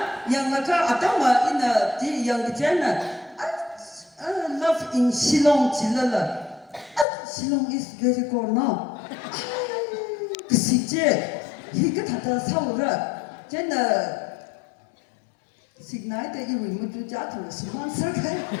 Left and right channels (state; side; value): drops out; right; at 7.1 s